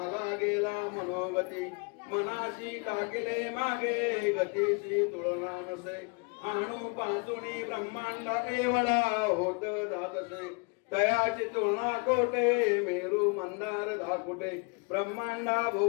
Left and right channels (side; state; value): right; quieter; 33.7 dB